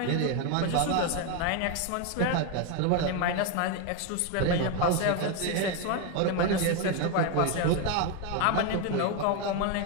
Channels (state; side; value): different; both; correlation 0.02